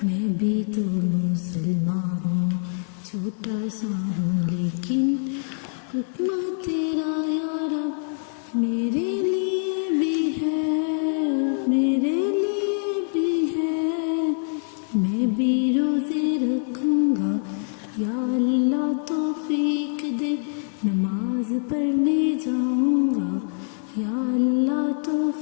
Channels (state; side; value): silent; right; digital silence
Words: میں بھی تو مسلمان ہوں، چھوٹا سا ہوں لیکن حکم تیرا یا رب میرے لیے بھی ہے، میرے لیے بھی ہے، میں بھی روزے رکھوں گا یا اللہ توفیق دے، نماز پڑھنے جاؤں گا یا اللہ